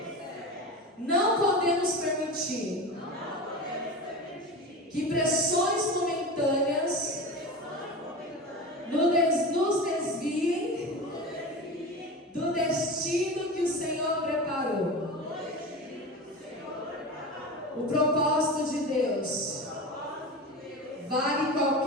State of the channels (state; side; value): normal; both; correlation 0.28